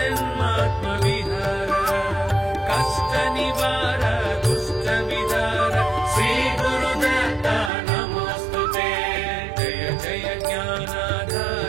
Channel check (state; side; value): drops out; left; at 7.7 s